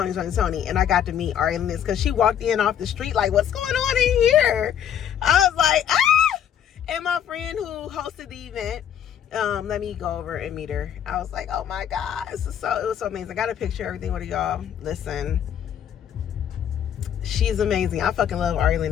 and I got to meet Ari Lennox because she walked in off the street like, what's going on in here? I was like, ah! And my friend who hosted the event, let me go over and meet her. I was like, oh my God, it was so amazing. I got a picture of everything with y'all. Listen, she's amazing. I fucking love Ari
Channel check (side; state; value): right; quieter; 9.4 dB